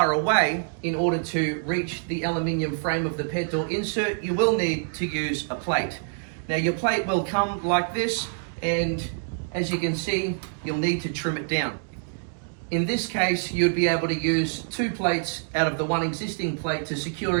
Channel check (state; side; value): silent; left; digital silence